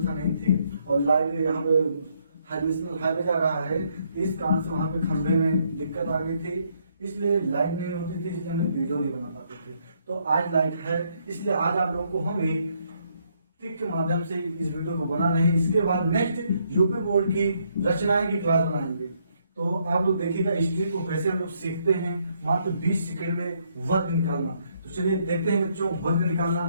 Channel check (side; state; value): both; inverted; correlation -0.72